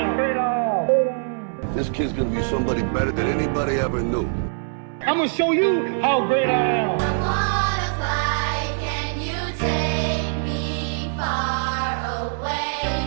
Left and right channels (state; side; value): silent; left; 63 dB below the other